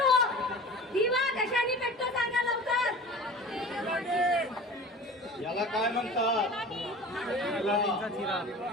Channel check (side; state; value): both; normal; correlation 0.39